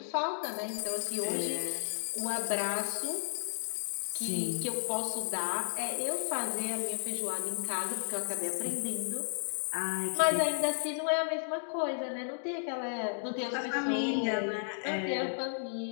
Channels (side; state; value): right; silent; digital silence